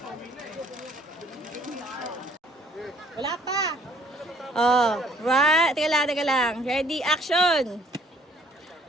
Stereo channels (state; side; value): normal; both; correlation 0.59